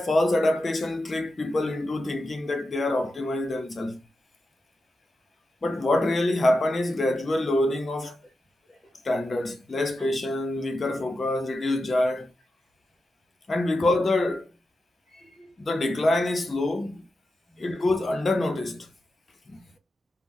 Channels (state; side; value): normal; both; correlation 0.90